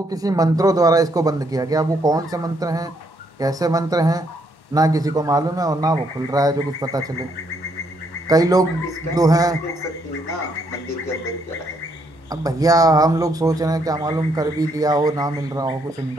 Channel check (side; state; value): both; normal; correlation 0.72